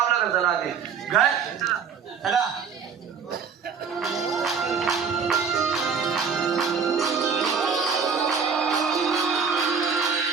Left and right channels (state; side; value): quieter; left; 6.1 dB